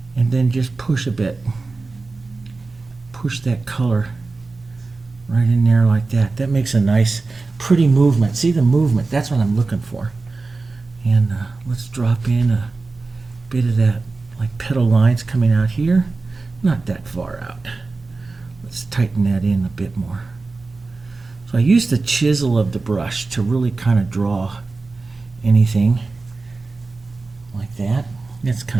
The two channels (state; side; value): quieter; left; 3.7 dB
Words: and then just push a bit. Push that color right in there like that. That makes a nice, pretty movement. See the movement? That's what I'm looking for. And let's drop in a bit of that, like petal lines coming out here. Not that far out. Let's tighten that in a bit more. So I use the chisel of the brush to really kind of draw anything like that. That's